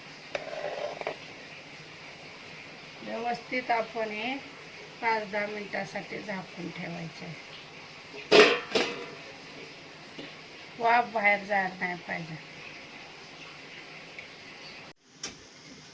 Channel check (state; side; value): identical; both; correlation 1.00